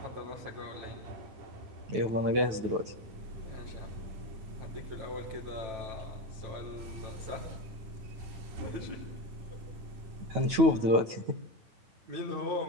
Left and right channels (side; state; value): left; late; 9.3 ms